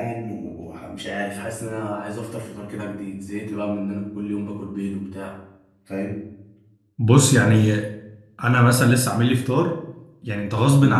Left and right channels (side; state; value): both; identical; correlation 1.00